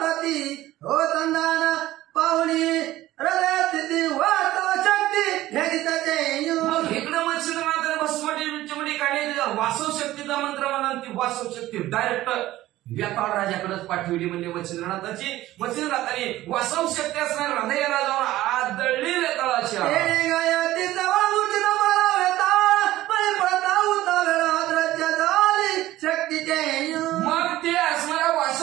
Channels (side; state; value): left; quieter; 15.6 dB